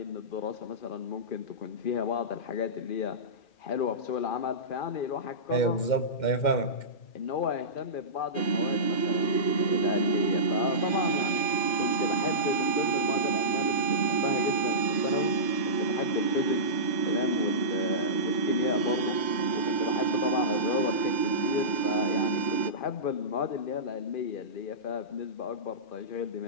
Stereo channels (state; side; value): late; right; 2.1 ms